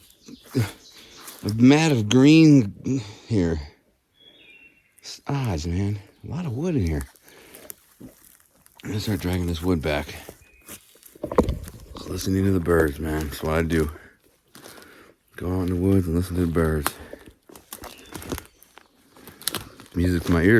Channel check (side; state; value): both; identical; correlation 1.00